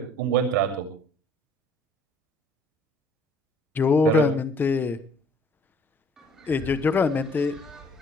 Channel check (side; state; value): both; normal; correlation 0.57